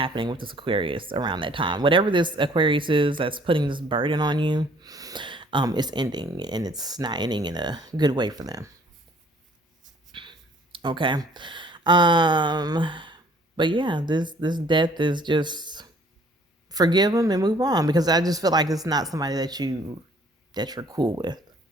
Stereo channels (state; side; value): normal; both; correlation 0.57